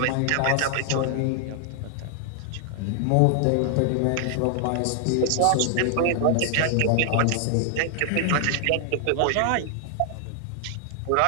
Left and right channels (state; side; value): different; both; correlation 0.00